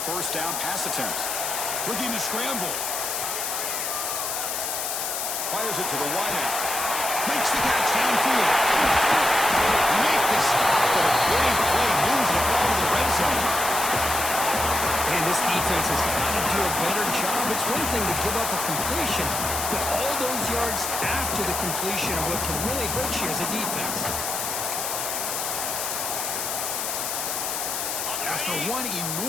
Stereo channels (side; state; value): left; noise; hiss, 2 dB below the sound